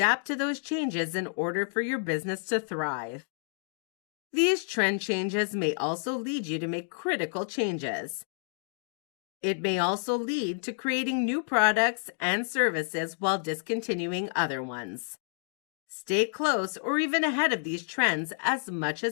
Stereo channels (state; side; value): silent; right; digital silence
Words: to those changes in order for your business to thrive. These trend changes may also lead you to make critical changes. It may also lead to creating new products and services while discontinuing other ones. Stay close or even ahead of these trends as much